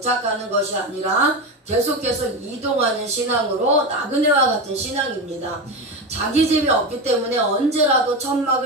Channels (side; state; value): both; normal; correlation 0.19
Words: 것이 아니라 계속해서 이동하는 신앙으로 나그네와 같은 신앙입니다. 자기 집이 없기 때문에 언제라도